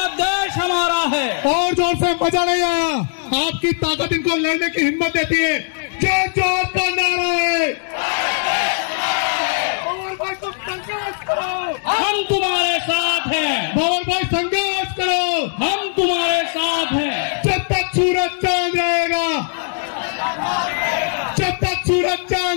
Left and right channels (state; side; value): silent; right; digital silence